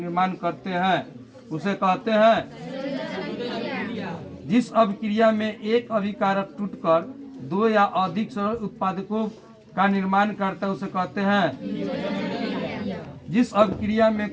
करते हैं उसे कहते हैं। जिस अभिक्रिया में एक अभिकारक टूटकर दो या अधिक सरल उत्पादकों का निर्माण करता है उसे कहते हैं। जिस अभिक्रिया में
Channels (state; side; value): identical; both; correlation 1.00